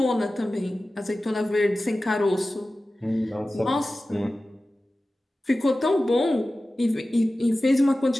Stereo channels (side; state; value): both; normal; correlation 0.95